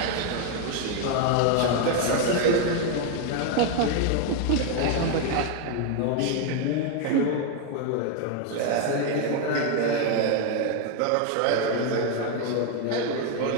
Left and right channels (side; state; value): both; different; correlation 0.01